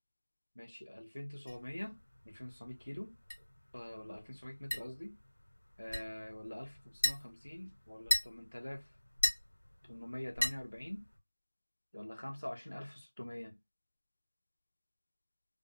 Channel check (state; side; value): inverted; both; correlation -1.00